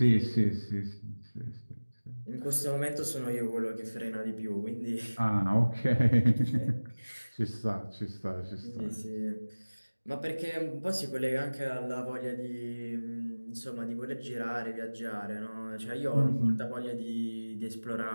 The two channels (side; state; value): both; inverted; correlation -1.00